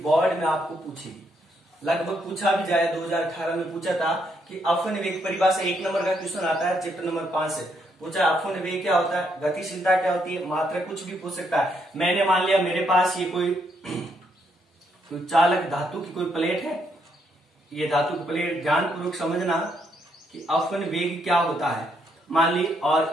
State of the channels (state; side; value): normal; both; correlation 0.75